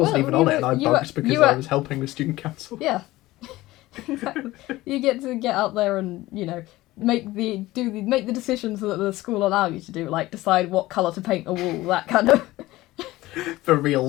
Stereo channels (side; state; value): right; quieter; 17.8 dB